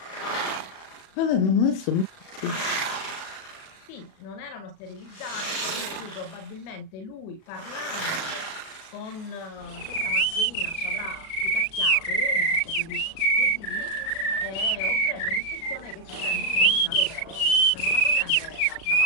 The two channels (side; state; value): right; late; 37 ms